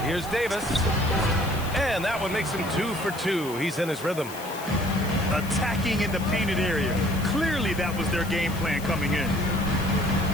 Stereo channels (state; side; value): noise; left; hiss, 15 dB below the sound